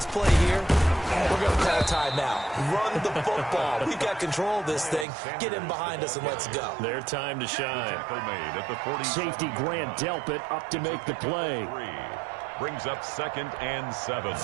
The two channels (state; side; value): drops out; left; at 5.1 s